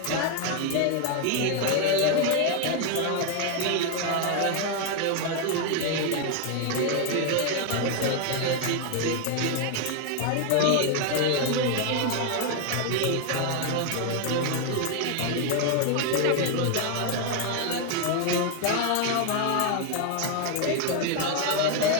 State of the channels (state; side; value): different; both; correlation 0.01